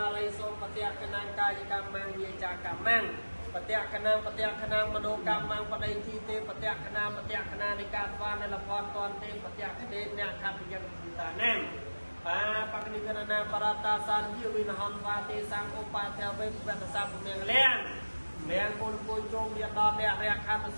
រៃសូមបតិកណាកាយកម្មងវិចាកម្មងបតិកណាមនោកម្មងបដិធីទេបតិកណានៃការស្វានលផនតនទេបតិកទេអ្នកខត្តយ៉ាងតាណាបាបកនិកណាបរតាសានជាវិនហនវាទេសង្ឃឧបាធិវេវតសាពុមៀងលៀងមៀងគុណគួយជុំមានដល់អ្នករខណ្ឌ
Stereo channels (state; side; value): inverted; both; correlation -1.00